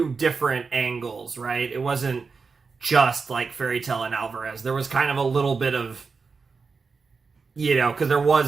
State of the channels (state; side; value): quieter; left; 4.8 dB